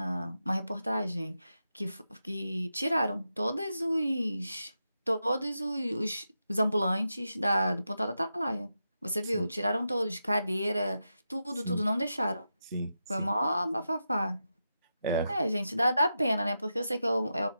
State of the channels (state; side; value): inverted; both; correlation -0.88